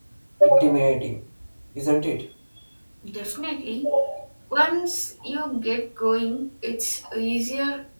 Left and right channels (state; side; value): inverted; both; correlation -1.00